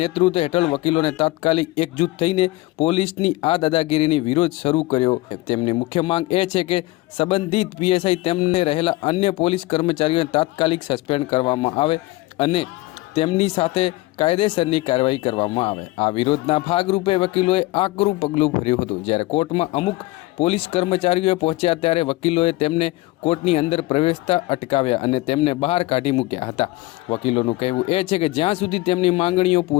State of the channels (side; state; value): right; quieter; 20.1 dB